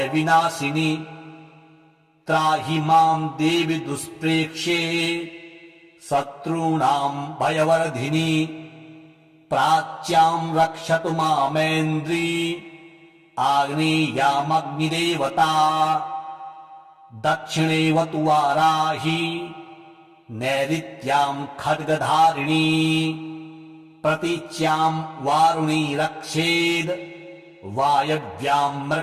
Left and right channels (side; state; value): both; identical; correlation 1.00